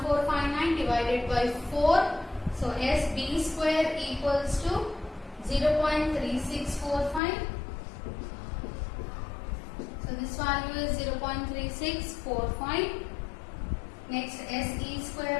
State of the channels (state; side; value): drops out; right; at 7.2 s